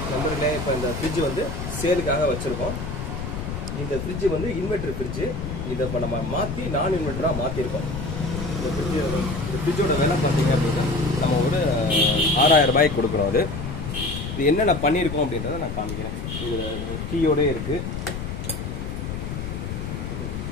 கம்பெனிலே இப்போ இந்த ஃப்ரிட்ஜ் வந்து சேலுக்காக வச்சுருக்கோம். இந்த ஃப்ரிட்ஜ் வந்து இன்வெர்டர் ஃப்ரிட்ஜு. இதை இப்போ நம்ம மாற்றி நான் இன்வெர்டராக மாற்றிருக்கோம். இந்த ஃப்ரிட்ஜோட விலை பார்த்தீங்க அப்படின்னா நம்ம ஒரு 6000 ரூபாய்க்கு கொடுக்குறோம். அது இது என்னென்ன பண்ணியிருக்கோம் அப்படின்றத நான் காமிக்கிறேன். இது கீயோடே இருக்குது,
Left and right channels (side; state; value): left; noise; rumble, 5 dB below the sound